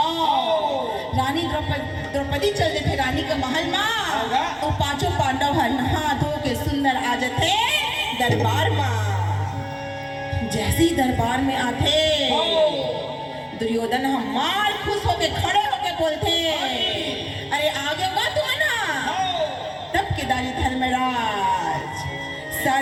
रानी द्रौपदी चलते थे रानी के महल में, तो पांचों पांडव नहा धो के सुंदर आ जाते दरबार में। जैसे ही दरबार में आते दुर्योधन हमार खुश होके खड़े होके बोलते, अरे आगे हुआ तुम ना। तब केदारी धर्मराज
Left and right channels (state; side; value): identical; both; correlation 1.00